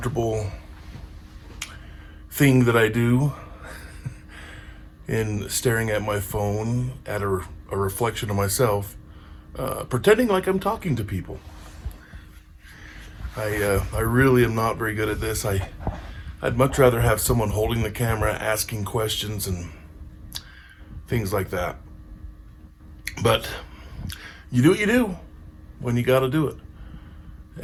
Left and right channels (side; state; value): both; identical; correlation 1.00